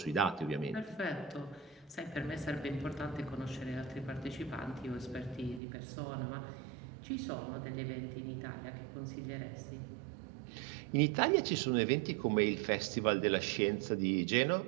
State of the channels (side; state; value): left; drops out; at 5.6 s